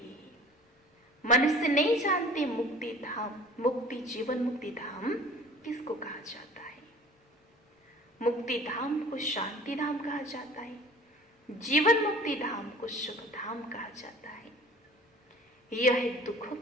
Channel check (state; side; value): normal; both; correlation 0.46